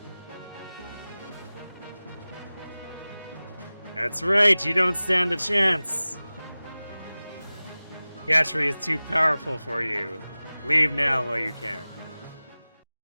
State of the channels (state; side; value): inverted; both; correlation -0.98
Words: That's right, you don't stand a chance! Gatry is too powerful for you. Leave now while you can.